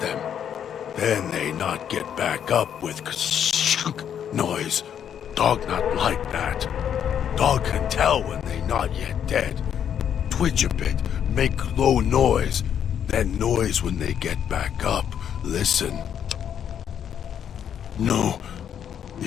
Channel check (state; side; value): quieter; right; 8.9 dB